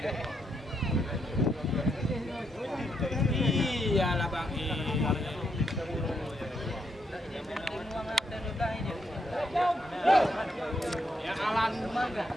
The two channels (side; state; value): both; normal; correlation 0.78